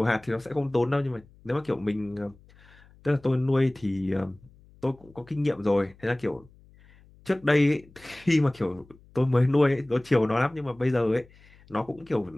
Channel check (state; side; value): noise; left; hum, 27 dB below the sound